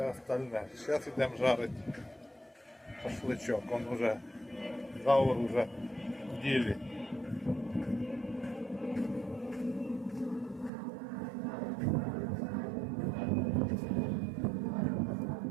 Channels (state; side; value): drops out; left; at 10.7 s